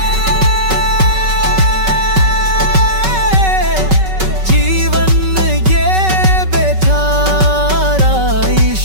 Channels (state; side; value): late; left; 5.3 ms